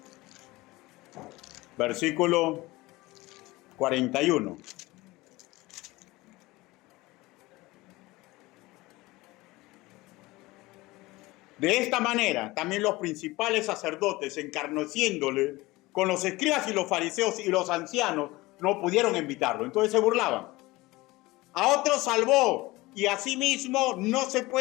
Versículo 41. De esta manera, también los principales sacerdotes, encarneciéndole con los escribas y los fariseos y los ancianos, no pudieron invitarlo. Entonces se burlaban. A otros salvó, y a sí mismo no se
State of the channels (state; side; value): quieter; right; 20.5 dB